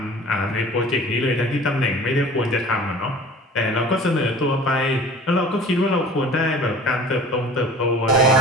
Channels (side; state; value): both; normal; correlation 0.44